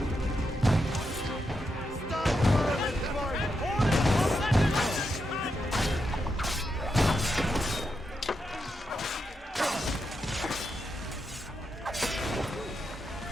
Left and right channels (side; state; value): both; normal; correlation 0.85